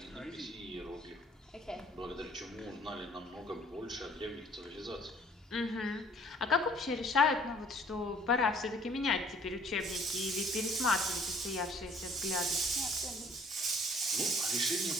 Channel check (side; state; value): both; normal; correlation 0.57